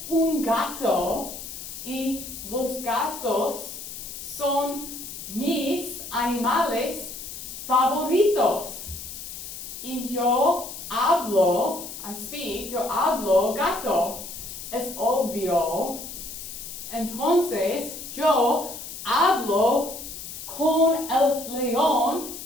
un gato y los gatos son mis animales favoritos. Y yo hablo gato. Es obvio. Entonces, yo hablo con el león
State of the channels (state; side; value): noise; left; hiss, 10 dB below the sound